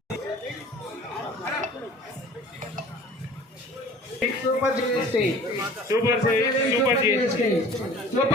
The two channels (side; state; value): both; normal; correlation 0.45